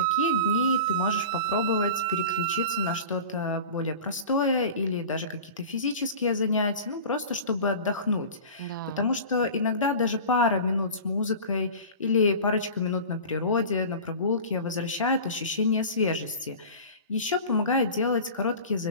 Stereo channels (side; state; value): both; inverted; correlation -0.36